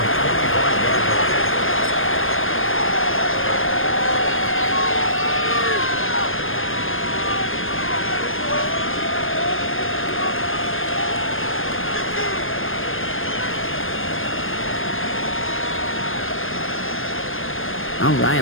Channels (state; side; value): late; right; 0.59 ms